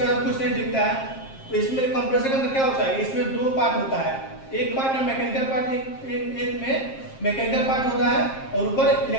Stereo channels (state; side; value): late; right; 7.5 ms